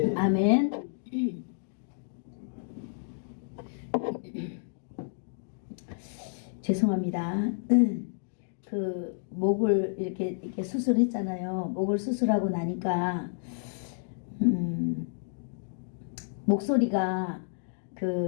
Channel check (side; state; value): right; silent; digital silence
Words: 아멘. 죄송합니다. 그 목을 이렇게 수술했잖아요. 목을 수술하고 나니까 목소리가